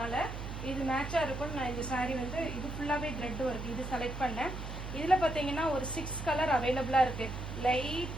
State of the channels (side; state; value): right; noise; hum, 7 dB below the sound